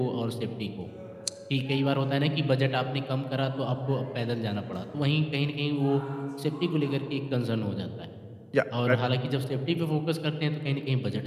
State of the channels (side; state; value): both; identical; correlation 1.00